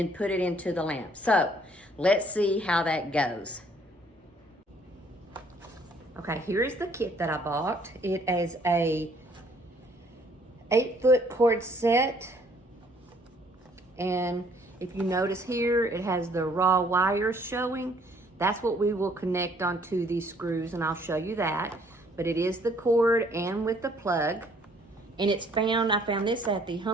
put it into the lamp. So let's see how that goes. Okay, here is the kit that I bought. It is a 8-foot cord set. And if you notice here, it has the raw wires showing. That's what we will connect onto these screws, and I'll show you that. But it is the cord and with the plug. And it's I found this at the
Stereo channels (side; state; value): both; normal; correlation 0.62